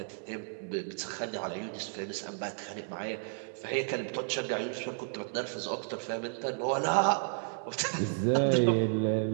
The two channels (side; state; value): left; silent; digital silence